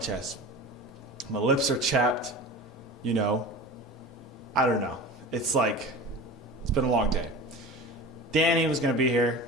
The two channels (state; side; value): normal; both; correlation 0.34